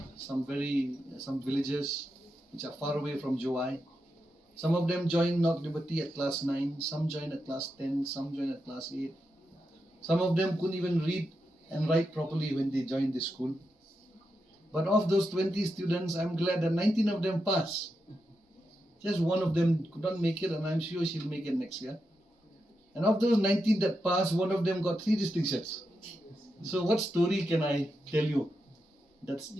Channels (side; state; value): both; normal; correlation 0.86